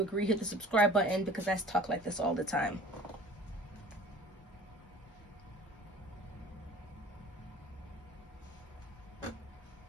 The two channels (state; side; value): normal; both; correlation 0.45